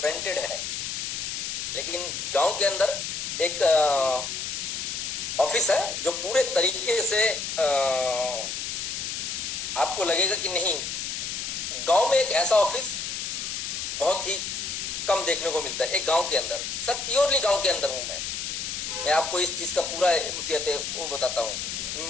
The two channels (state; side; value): noise; left; hiss, 4 dB below the sound